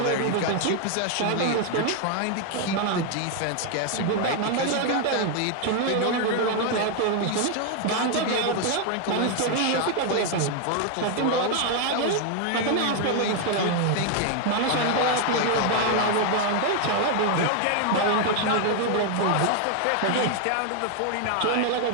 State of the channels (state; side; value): different; both; correlation 0.00